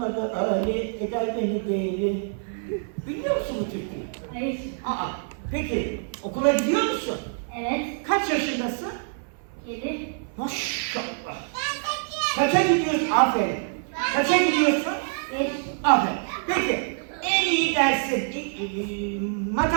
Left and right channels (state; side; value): silent; left; 56 dB below the other